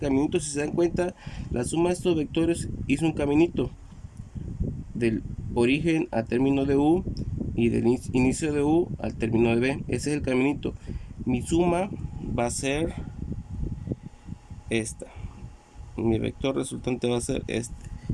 Si se dan cuenta, la suma de estos vectores hizo un caminito origen al término de U y del inicio de U al término de B. Ese es el caminito. Mi suma va a ser esta. Mi vector resultante va a ser este.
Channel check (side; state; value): both; identical; correlation 1.00